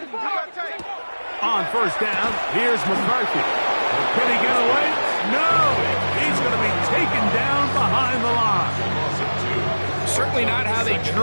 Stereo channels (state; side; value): inverted; both; correlation -1.00